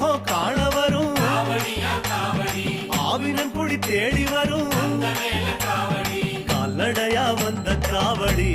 காண வரும், ஆவினன் குடி தேடி வரும், கால்நடையா வந்த காவடி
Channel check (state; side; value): identical; both; correlation 1.00